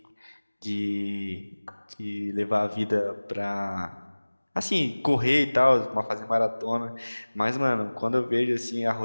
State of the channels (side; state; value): both; inverted; correlation -1.00